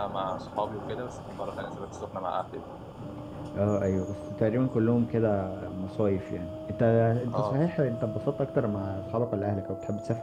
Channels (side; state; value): both; identical; correlation 1.00